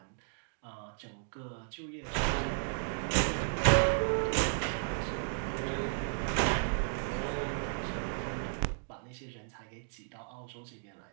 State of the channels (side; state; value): left; silent; digital silence